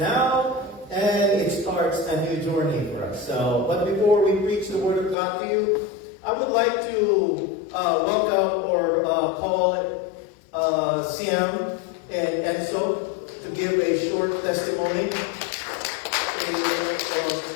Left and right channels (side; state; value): right; drops out; at 5.2 s